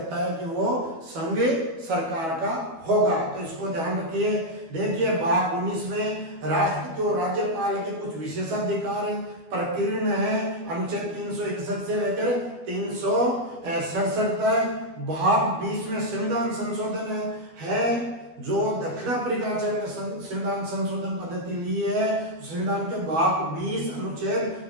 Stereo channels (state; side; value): late; left; 12 ms